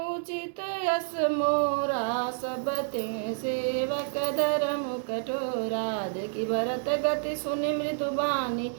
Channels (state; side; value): silent; left; digital silence